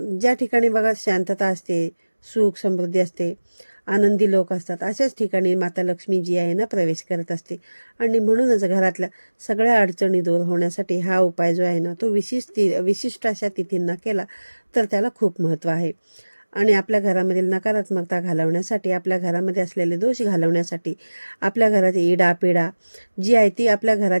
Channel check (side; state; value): both; inverted; correlation -1.00